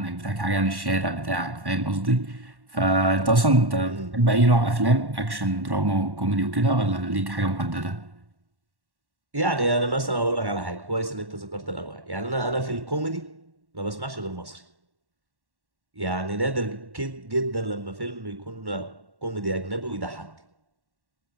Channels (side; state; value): left; late; 1.1 ms